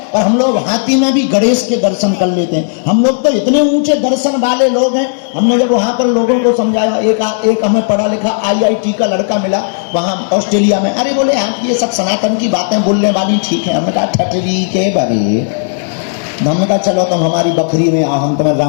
पर हम लोग हाथी में भी गणेश के दर्शन कर लेते हैं। हम लोग तो इतने ऊंचे दर्शन वाले लोग हैं। हमने जब वहां पर लोगों को समझाया, एक हमें पढ़ा लिखा IIT का लड़का मिला वहां ऑस्ट्रेलिया में। अरे बोले आप ये सब सनातन की बातें बोलने वाली ठीक है। हमने कहा ठटरी के बरे। हमने कहा चलो तुम हमारी बकरी में आओ, हम तुम्हें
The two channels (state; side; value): silent; right; digital silence